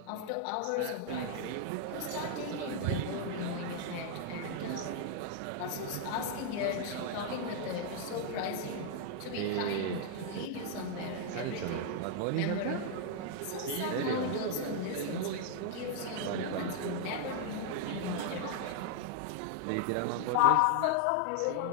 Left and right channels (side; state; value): both; different; correlation 0.00